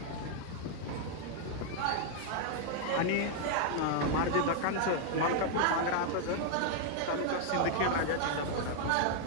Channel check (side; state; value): both; different; correlation 0.00